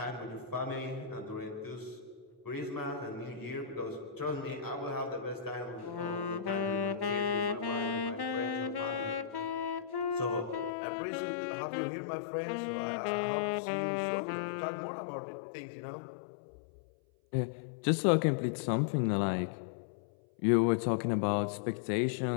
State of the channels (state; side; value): drops out; right; at 10.7 s